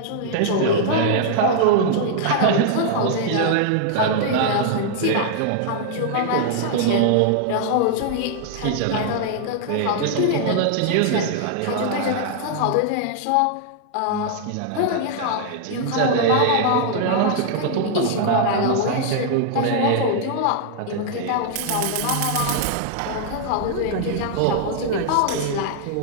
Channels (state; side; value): different; both; correlation -0.01